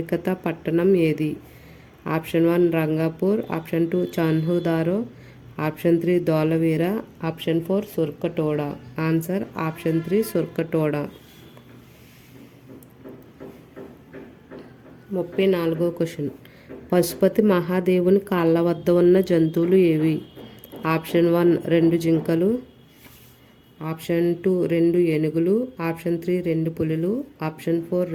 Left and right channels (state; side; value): identical; both; correlation 1.00